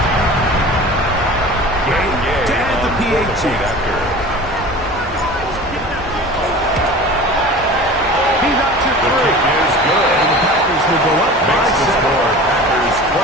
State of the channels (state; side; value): normal; both; correlation 0.38